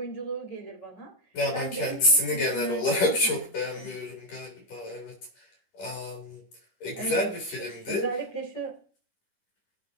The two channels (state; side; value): late; right; 11 ms